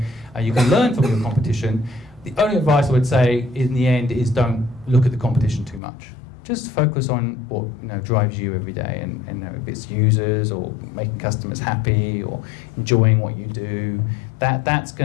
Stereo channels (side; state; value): right; drops out; at 5.8 s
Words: you can learn from your competition. The only advice I would say in the end is don't look at the competition too much. Just focus on what drives you every day, and if it's users or making customers happy or enjoying what you do. That's